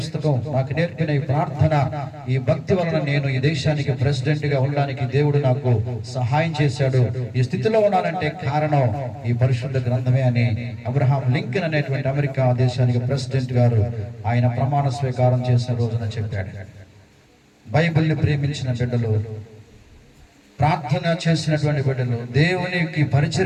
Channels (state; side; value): identical; both; correlation 1.00